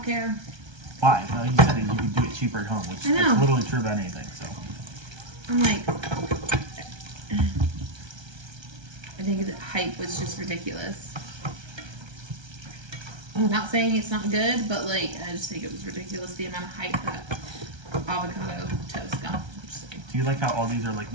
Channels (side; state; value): left; late; 1.3 ms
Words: care. Why? You said that you could do it cheaper at home, which is literally true about anything. So I'm like, I think the hype was just ridiculous. I'm not saying it's not good, but like, I just think it was ridiculous the amount of hype that avocado toast got. Do you like how all these are like